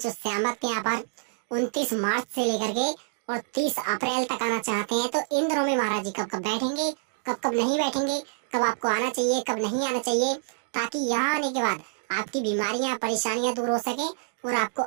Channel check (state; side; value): silent; left; digital silence